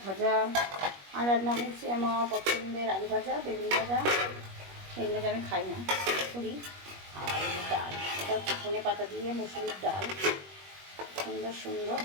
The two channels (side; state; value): left; late; 21 ms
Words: ভাজা। আর রান্না হচ্ছে আমার পছন্দের আলু ভাজা, বেগুন ভাজা। এগুলো যে আমি খাই না, করি। আর ডাল, এটা হচ্ছে ধনে পাতা দিয়ে মুসুরির ডাল, সুন্দর সুন্দর